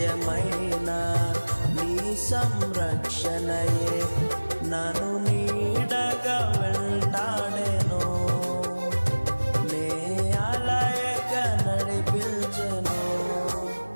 నీ సంరక్షణయే నన్ను నీడగా వెంటాడెను, నే అలయగా నడిపించెను.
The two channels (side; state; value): both; inverted; correlation -1.00